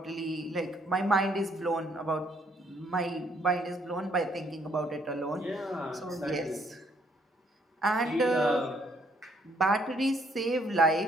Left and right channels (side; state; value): both; normal; correlation 0.67